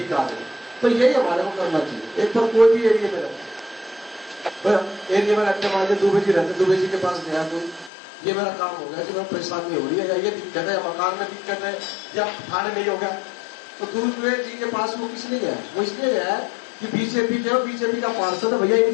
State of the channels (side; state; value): right; drops out; at 7.9 s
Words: आ गए। तो यही हमारे को करना चाहिए। एक तो कोई भी एरिया में रहते, एरिया में रहते मान लीजिए दुबे जी रहते, दुबे जी के पास गया तो ये मेरा काम हो गया कि मैं परेशानी हो रही है, या ये दिक्कत है, मकान में दिक्कत है, या थाने नहीं हो गया, तो दुबे जी के पास वो किस लिए गया, वो इसलिए गया है कि बीजेपी जो बीजेपी का पार्षद है भैया